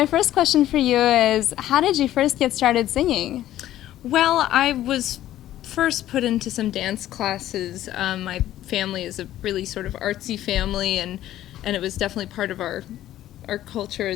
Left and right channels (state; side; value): quieter; right; 13.3 dB